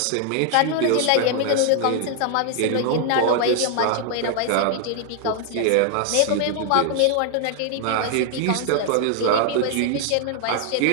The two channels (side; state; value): both; different; correlation 0.00